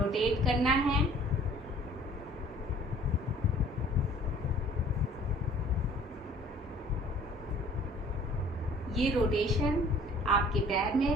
करना है। ये रोटेशन आपके पैर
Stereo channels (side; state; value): both; normal; correlation 0.52